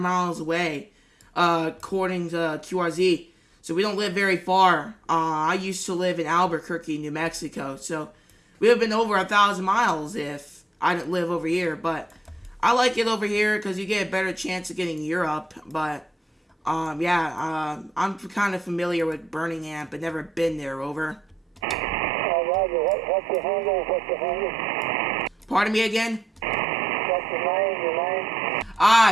miles away, according to QRZ. So we don't live very far. I used to live in Albuquerque, New Mexico. So we would have been over 1,000 miles if I didn't live over here. But I like it over here because you get a better chance of getting Europe. But I'm kind of familiar with Birmingham, but never been there. Over. Roger. What's the handle? Pardon me again? What's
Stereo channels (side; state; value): both; normal; correlation 0.83